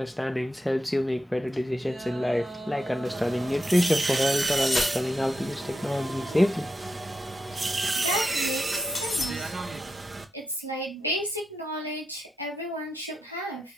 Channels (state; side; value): normal; both; correlation 0.87